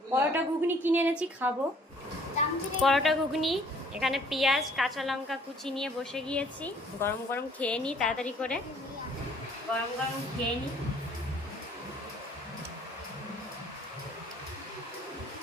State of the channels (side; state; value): both; normal; correlation 0.58